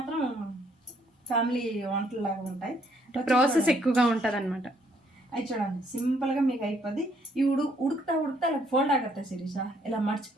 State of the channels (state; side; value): normal; both; correlation 0.68